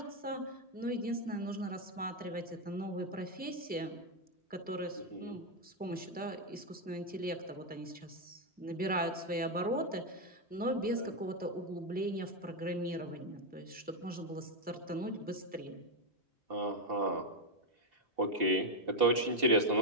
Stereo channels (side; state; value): both; normal; correlation 0.04